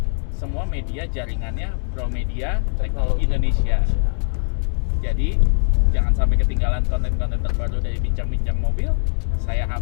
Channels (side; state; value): right; silent; 65 dB below the other